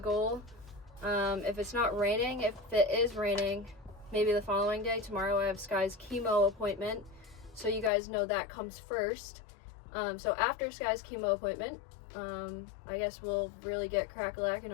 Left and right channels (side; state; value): right; drops out; at 7.9 s